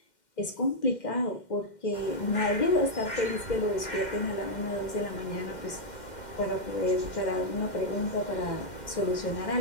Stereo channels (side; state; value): right; late; 2.1 ms